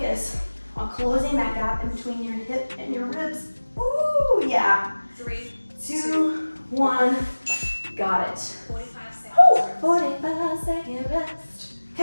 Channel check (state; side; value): inverted; both; correlation -1.00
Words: on closing that gap in between your hip and your ribs. Ooh, yeah. 3, 2, 1, got it. 45 seconds. Ooh, 45-second rest.